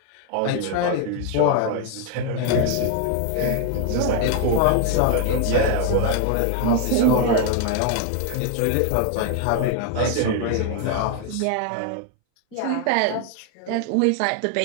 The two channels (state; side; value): different; both; correlation 0.01